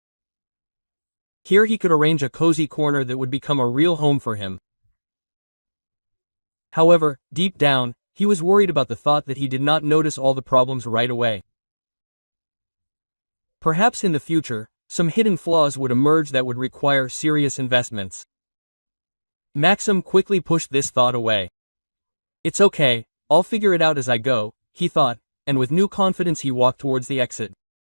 Here he could arrange a cozy corner that would become a real home for him. However, deep down, he was worried about the thought that he did not notice all the problems right away. Perhaps in the future, some hidden flaws would emerge that would require serious investments. Maxim quickly pushed this thought away. It's okay, I'll figure it out as I go, he thought, and with new confidence he walked towards the exit.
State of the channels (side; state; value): both; inverted; correlation -1.00